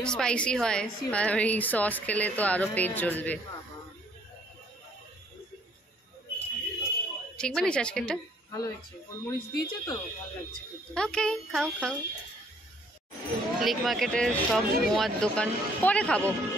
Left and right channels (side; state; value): both; normal; correlation 0.63